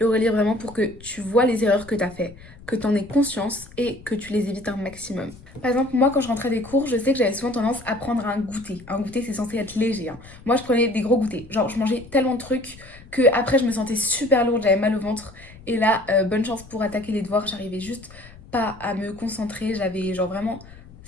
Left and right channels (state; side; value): noise; left; rumble, 20 dB below the sound